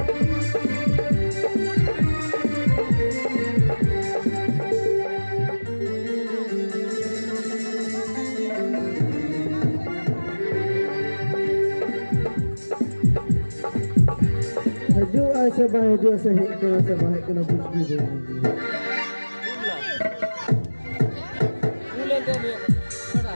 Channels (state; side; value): inverted; both; correlation -1.00